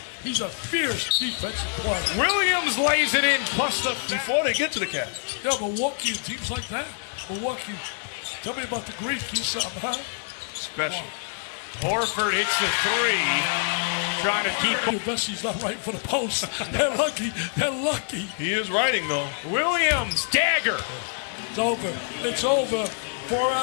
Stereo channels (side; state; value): right; silent; 61 dB below the other